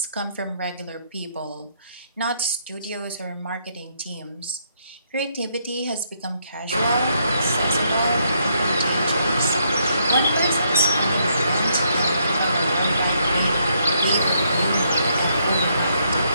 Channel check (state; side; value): inverted; both; correlation -0.74